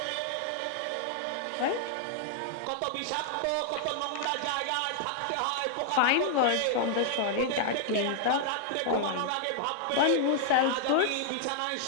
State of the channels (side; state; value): both; different; correlation 0.00